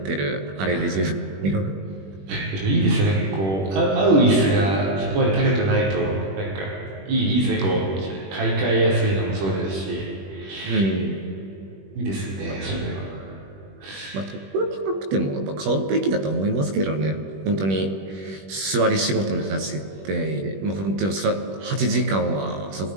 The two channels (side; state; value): left; late; 21 ms